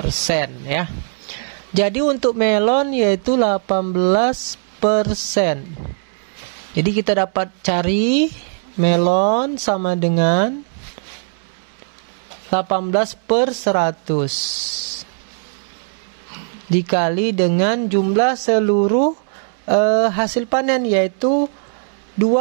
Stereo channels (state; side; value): silent; left; 66 dB below the other